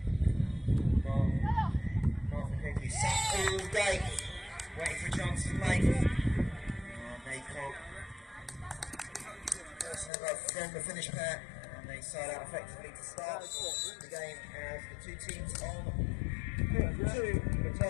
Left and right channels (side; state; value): right; drops out; at 10.1 s